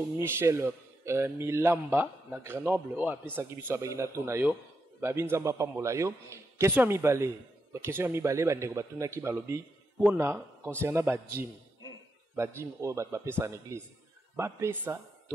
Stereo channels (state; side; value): normal; both; correlation 0.84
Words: Michel Milamba na Grenoble o apesa kibiso abagina tuna yo babinzamba pambola yo question à mi balé ba ndeko batuna ki balobi pona concernant ba gym o ba pesa en église ba pesa